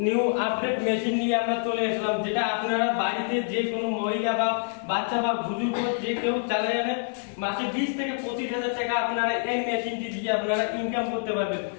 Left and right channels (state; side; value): silent; right; 56 dB below the other